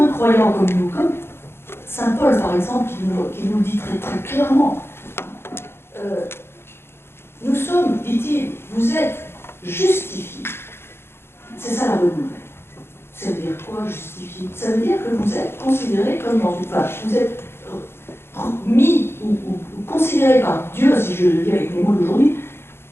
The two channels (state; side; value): late; right; 0.11 ms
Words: croyant comme nous, comme Saint Paul par exemple, qui nous dit très, très clairement, nous sommes, dit-il, vous êtes justifiés. C'est ça la bonne nouvelle. Ça veut dire quoi, justifié? Ça veut dire que vous êtes considéré comme dans une page. Vous êtes mis ou considéré par Dieu, si je le dis avec les mots d'aujourd'hui,